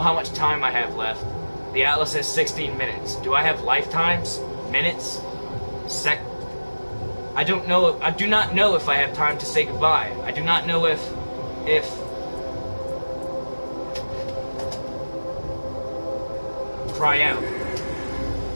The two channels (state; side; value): inverted; both; correlation -1.00